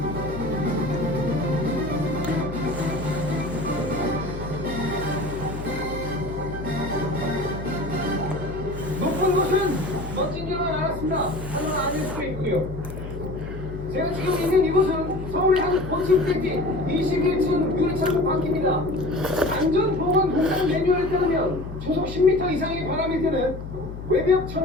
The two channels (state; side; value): noise; left; hum, 10 dB below the sound